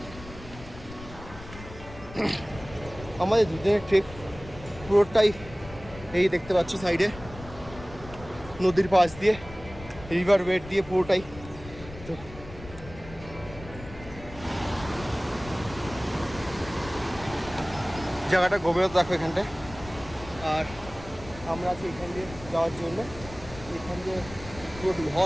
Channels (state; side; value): noise; left; rumble, 15 dB below the sound